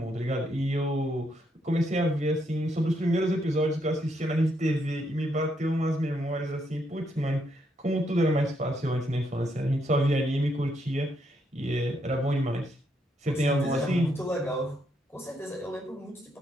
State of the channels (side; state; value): both; normal; correlation 0.76